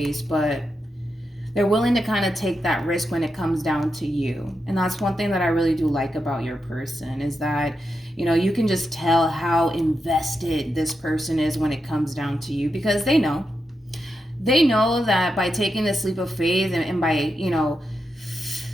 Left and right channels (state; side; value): normal; both; correlation 0.87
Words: but they're willing to kind of take that risk when it comes down to you. And that's one thing that I really do like about your person, is that, you know, you can just tell how invested this person is when it comes down to you, because they know that by taking this leap of faith and by, you know,